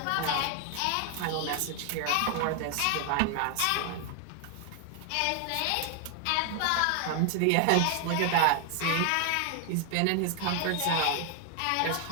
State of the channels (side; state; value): both; different; correlation 0.00